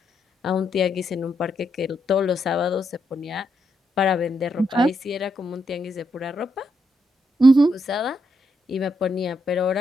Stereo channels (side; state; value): both; normal; correlation 0.80